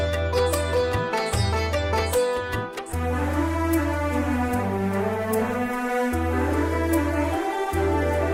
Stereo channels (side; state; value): both; identical; correlation 1.00